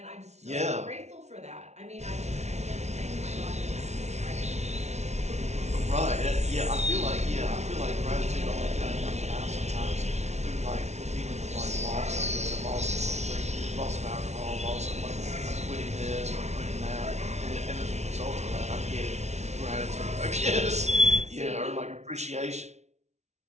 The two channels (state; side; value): late; left; 0.32 ms